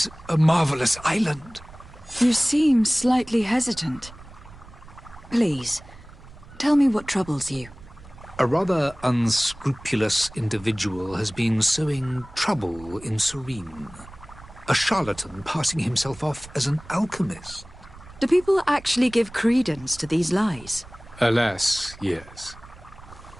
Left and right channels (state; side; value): noise; right; rumble, 19 dB below the sound